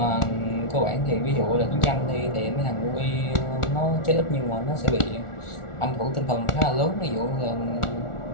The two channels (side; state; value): right; late; 1.4 ms